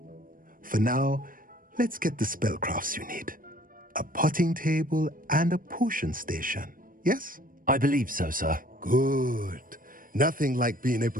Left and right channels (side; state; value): left; late; 0.40 ms